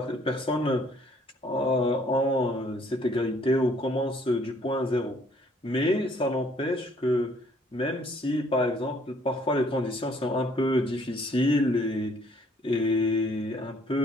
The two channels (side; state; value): both; normal; correlation 0.62